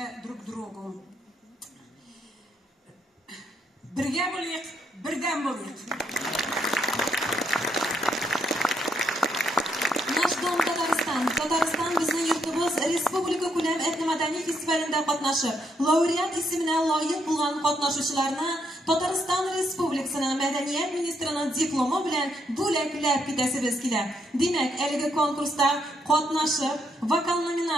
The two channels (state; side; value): normal; both; correlation 0.76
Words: друг к другу. Бірге болайық, бірден болайық. Казан bizning yurtimiz Respublika ko'lam etnomadaniy festivalida qatnashib, laureat ismini loyiq bo'lgan qatnashuvchilarni Tatariston Respublikasining madaniyat ministrining diplomi bilan bo'laklab ketasimiz keladi. Demak, elgi konkursda qatnashib, vokal